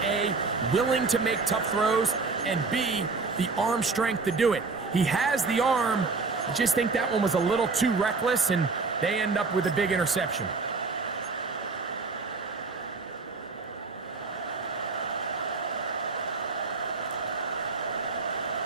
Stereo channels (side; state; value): left; quieter; 4.2 dB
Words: A, willing to make tough throws, and B, the arm strength to do it. He has the arm. I just think that one was a little too reckless, and they end up with a big interception.